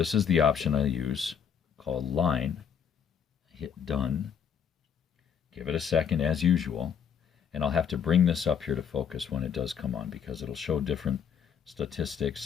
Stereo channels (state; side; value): quieter; right; 7.5 dB